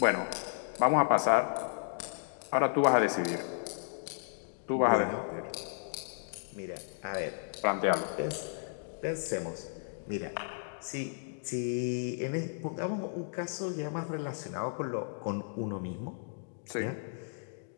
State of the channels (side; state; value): right; silent; digital silence